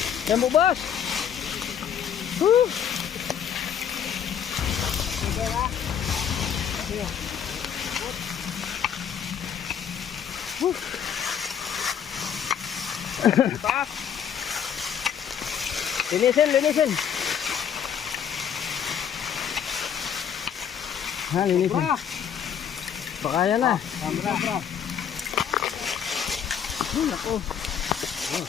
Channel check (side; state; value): right; quieter; 8.4 dB